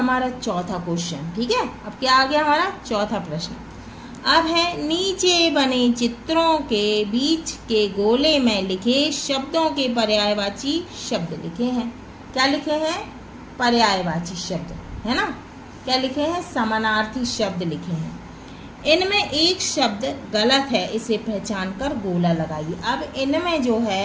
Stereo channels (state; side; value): identical; both; correlation 1.00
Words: चौथा क्वेश्चन। ठीक है। अब क्या आ गया हमारा चौथा प्रश्न? अब है नीचे बने चित्रों के बीच के गोले में लिखे शब्दों के पर्यायवाची शब्द लिखे हैं। क्या लिखे हैं? पर्यायवाची शब्द, है ना। क्या लिखे हैं? समानार्थी शब्द लिखे हैं। इनमें एक शब्द गलत है, इसे पहचान कर गोला लगाइए। अब इनमें जो